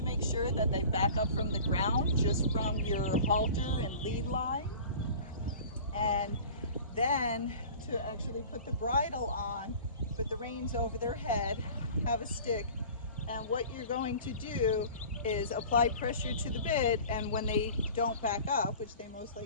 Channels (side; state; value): both; inverted; correlation -0.42